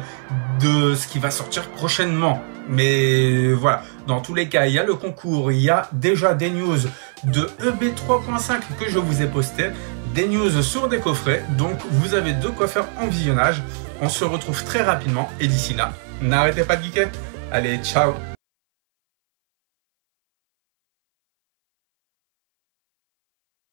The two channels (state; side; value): silent; left; 61 dB below the other